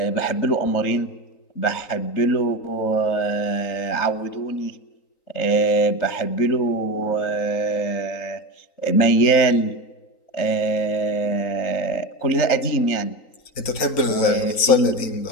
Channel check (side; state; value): right; late; 3.9 ms